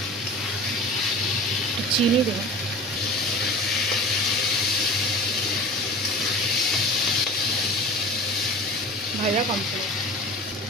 চিনি দেবো। ভাজা কমপ্লিট,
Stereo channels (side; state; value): both; normal; correlation 0.37